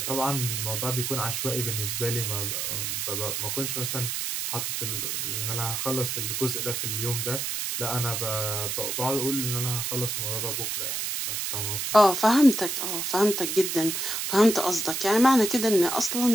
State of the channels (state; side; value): noise; right; hiss, 2 dB below the sound